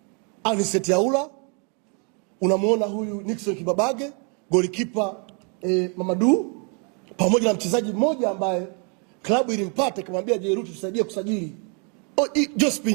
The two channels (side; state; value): left; quieter; 36.1 dB